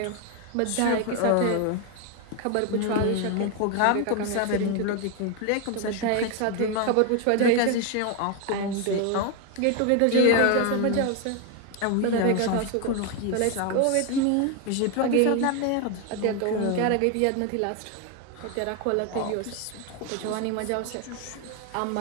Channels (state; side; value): different; both; correlation 0.01